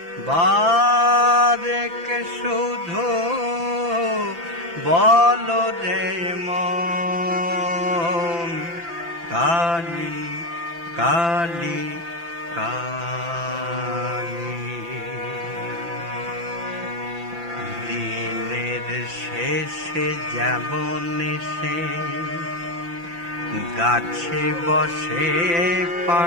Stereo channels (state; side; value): late; left; 5.9 ms